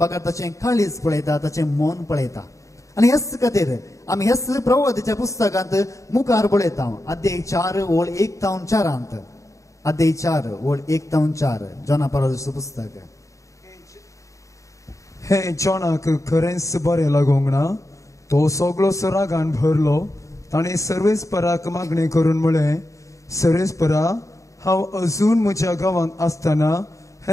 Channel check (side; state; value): right; late; 0.15 ms